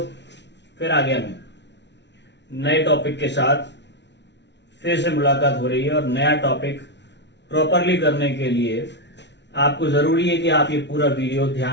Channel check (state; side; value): late; right; 0.51 ms